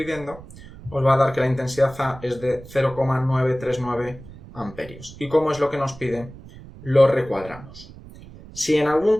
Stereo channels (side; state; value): right; noise; rumble, 18 dB below the sound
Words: os va a dar que la intensidad A es de 0,939 amperios. ¿Y cómo es lo que nos pide? Lo recuadramos. Si en algún